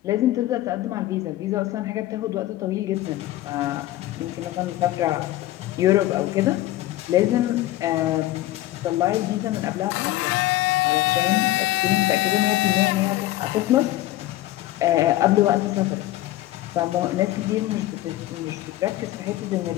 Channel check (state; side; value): quieter; right; 15.6 dB